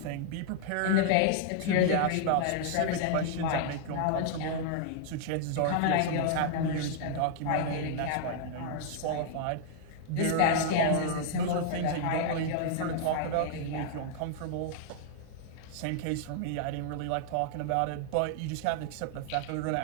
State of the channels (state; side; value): different; both; correlation -0.01